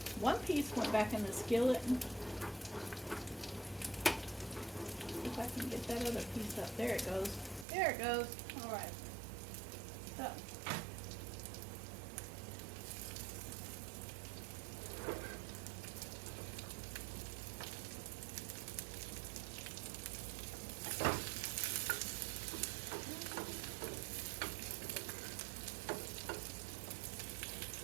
one piece went back in the skillet. If I can get that other piece up. There it goes. There it goes. All right. So.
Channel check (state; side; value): drops out; left; at 7.7 s